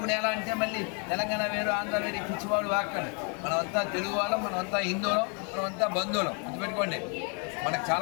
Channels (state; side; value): quieter; right; 37.8 dB